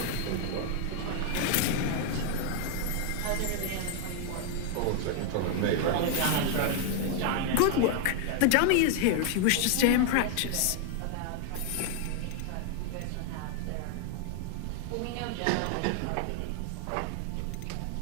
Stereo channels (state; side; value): different; both; correlation 0.00